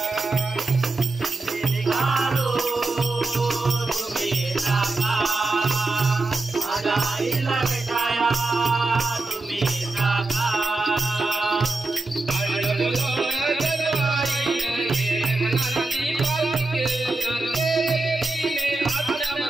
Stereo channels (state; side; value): quieter; left; 3.3 dB